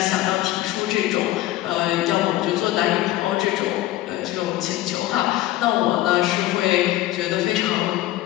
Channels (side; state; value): right; quieter; 15.7 dB